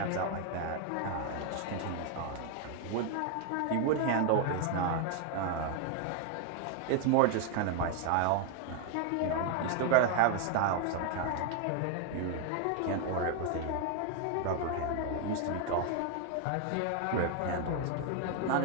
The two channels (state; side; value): different; both; correlation 0.00